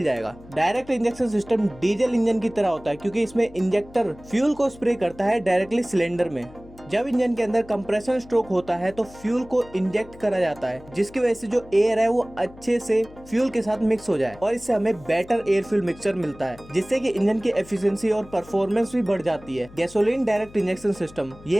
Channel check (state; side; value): noise; left; hum, 21 dB below the sound